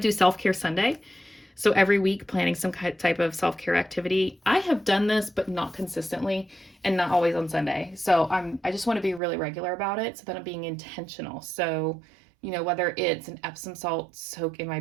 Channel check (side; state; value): left; drops out; at 9.2 s